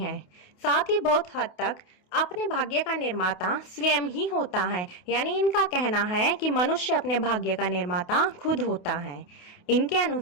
साथ ही बहुत हद तक अपने भाग्य का निर्माता स्वयं ही होता है, यानी इनका कहना है कि मनुष्य अपने भाग्य का निर्माता खुद होता है। इनके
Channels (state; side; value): late; right; 28 ms